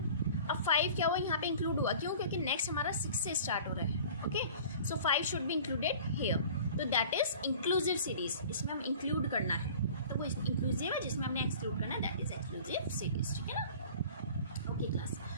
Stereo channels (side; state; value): both; inverted; correlation -0.44